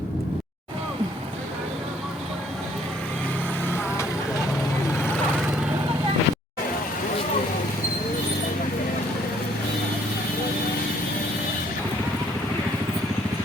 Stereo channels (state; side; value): normal; both; correlation 0.63